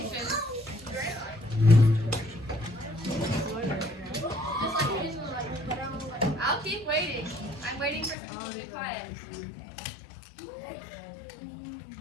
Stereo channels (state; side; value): drops out; right; at 8.2 s